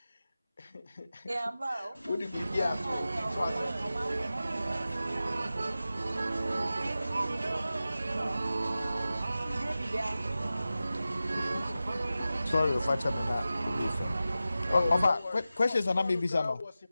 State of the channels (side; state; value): both; inverted; correlation -0.94